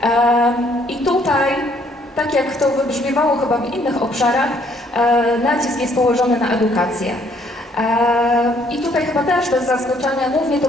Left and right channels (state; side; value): normal; both; correlation 0.65